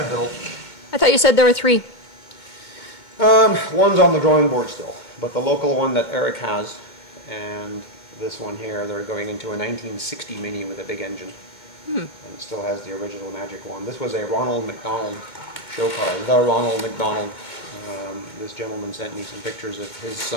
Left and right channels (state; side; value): late; right; 2.2 ms